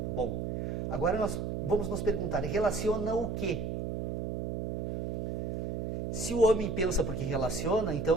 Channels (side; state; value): right; noise; hum, 2 dB below the sound